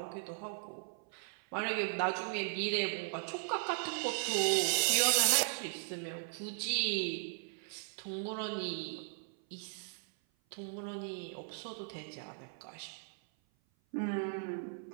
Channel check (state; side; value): silent; left; 53 dB below the other